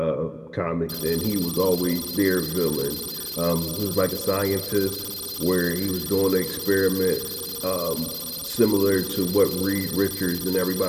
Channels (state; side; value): identical; both; correlation 1.00